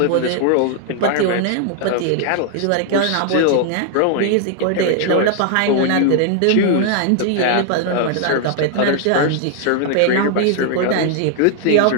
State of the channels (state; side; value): different; both; correlation 0.00